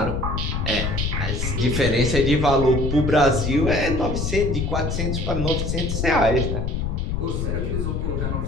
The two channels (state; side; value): noise; left; rumble, 1 dB below the sound